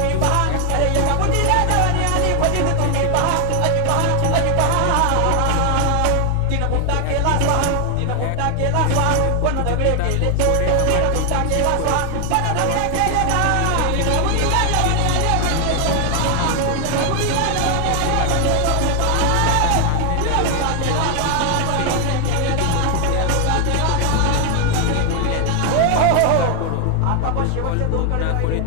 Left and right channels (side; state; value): both; different; correlation 0.00